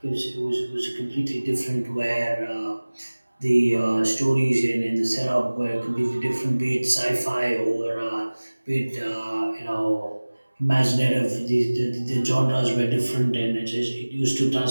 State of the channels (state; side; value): inverted; both; correlation -1.00